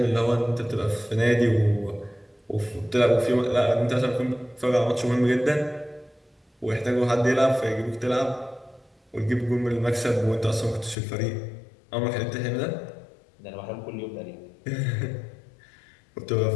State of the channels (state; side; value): drops out; right; at 11.0 s